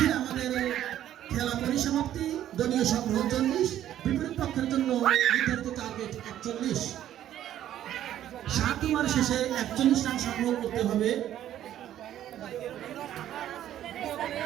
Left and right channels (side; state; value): left; quieter; 11.7 dB